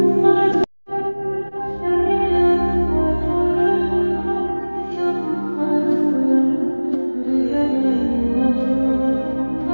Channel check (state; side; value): inverted; both; correlation -1.00